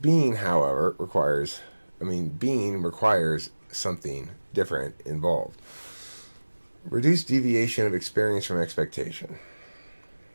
being, however, requires something different involved. Reduced deviation of experience from expectation.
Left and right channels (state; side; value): inverted; both; correlation -1.00